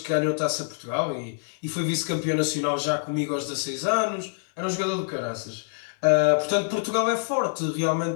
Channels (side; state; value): right; silent; digital silence